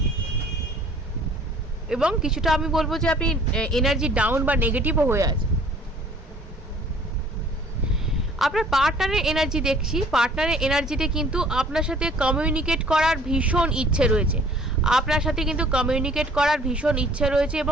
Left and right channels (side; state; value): both; normal; correlation 0.53